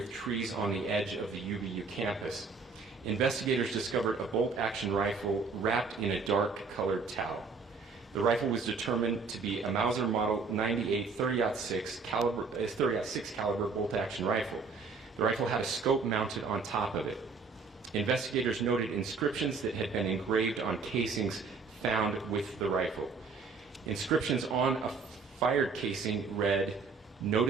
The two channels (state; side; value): quieter; left; 4.7 dB